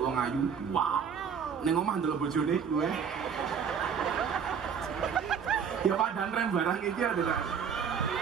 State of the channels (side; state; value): left; quieter; 7.0 dB